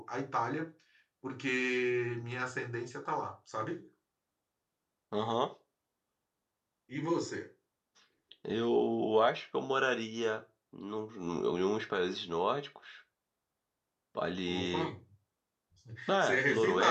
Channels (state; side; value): identical; both; correlation 1.00